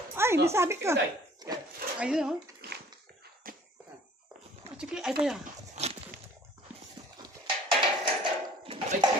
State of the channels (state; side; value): normal; both; correlation 0.52